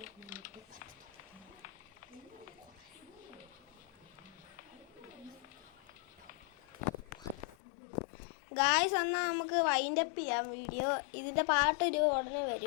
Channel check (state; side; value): drops out; right; at 7.6 s